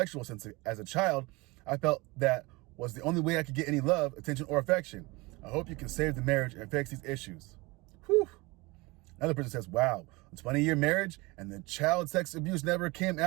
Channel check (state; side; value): quieter; left; 23.9 dB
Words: since, as a child, I felt that was the only way I could get any love, attention, or affection. I hope you can save the marriage and fix these issues. Whew. Another person says, wow, a 20-year marriage and the child sex abuse never came